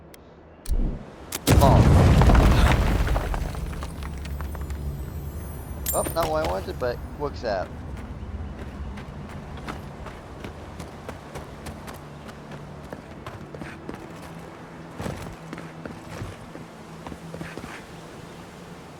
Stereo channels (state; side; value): identical; both; correlation 1.00